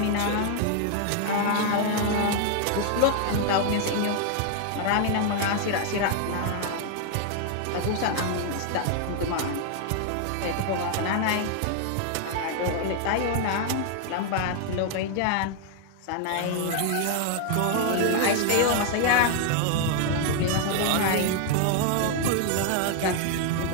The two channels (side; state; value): both; different; correlation 0.00